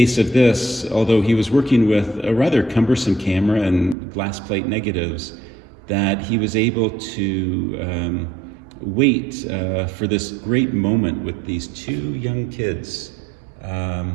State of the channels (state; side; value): drops out; left; at 4.0 s